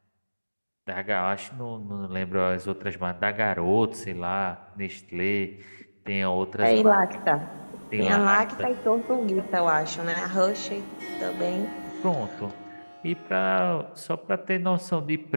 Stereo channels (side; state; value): both; inverted; correlation -1.00